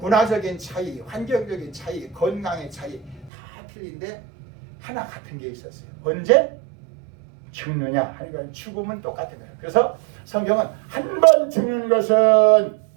차이, 환경적인 차이, 건강의 차이 다 틀린데 하나 같은 게 있었어요. 언제? 죽느냐 하는 건 죽음은 똑같은 거예요. 그래서 성경은 한 번 죽는 것은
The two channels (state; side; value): drops out; left; at 3.3 s